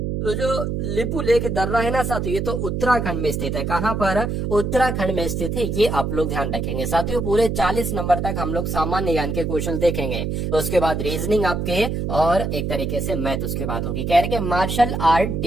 तो जो लिपू लेक दर्रा है ना साथियों, ये तो उत्तराखंड में स्थित है। कहाँ पर? उत्तराखंड में स्थित है। ये आप लोग ध्यान रखेंगे साथियों। पूरे 40 नंबर तक हम लोग सामान्य ज्ञान के क्वेश्चन देखेंगे, तो उसके बाद रीजनिंग आपके, और एक तरीके से मैथ उसके बाद होगी। कह रहे कि मार्शल आर्ट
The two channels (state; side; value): noise; right; hum, 2 dB below the sound